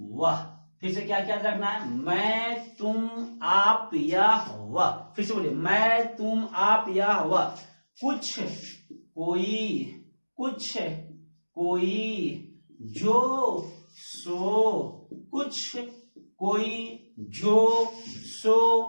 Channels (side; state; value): both; inverted; correlation -1.00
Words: वह। फिर से क्या याद रखना है, मैं, तुम, आप, यह, वह। फिर से बोलिए, मैं, तुम, आप, यह, वह। कुछ, कोई, कुछ, कोई, जो, सो, कुछ, कोई, जो,